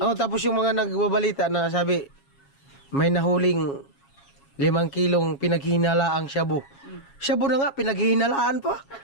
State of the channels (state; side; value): late; right; 7.3 ms